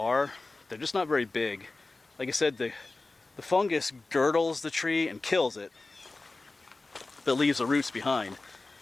They're just not very big. Like I said, the fungus girdles the tree and kills it, but leaves the roots behind.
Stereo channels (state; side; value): quieter; right; 3.4 dB